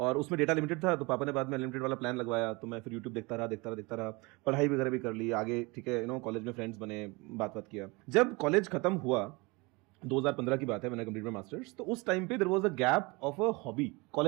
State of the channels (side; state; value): left; quieter; 26.0 dB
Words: उसमें डेटा लिमिटेड था। तो पापा ने बाद में अनलिमिटेड वाला प्लान लगवाया, तो मैं फिर यूट्यूब देखता रहा। पढ़ाई वगैरह भी कर ली आगे, ठीक है, कॉलेज में फ्रेंड्स बने, बात किया। जब कॉलेज खत्म हुआ 2015 की बात है, मैंने कंप्लीट माई मास्टर्स। तो उस टाइम पे there was a gap of a hobby.